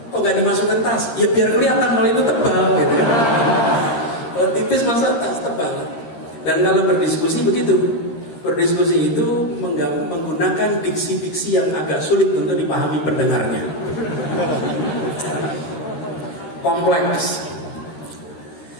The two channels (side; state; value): right; late; 13 ms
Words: Kok gak dimasukkan tas? Ya biar kelihatan kalau itu tebal gitu kan. Kalau tipis masa tas tebal. Dan kalau berdiskusi begitu. Berdiskusi itu menggunakan diksi-diksi yang agak sulit untuk dipahami pendengarnya. Kompleks.